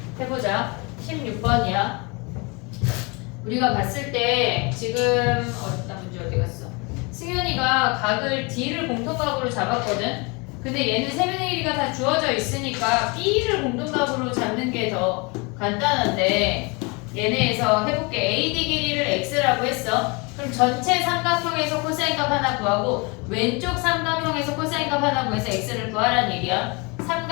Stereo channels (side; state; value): right; quieter; 29.4 dB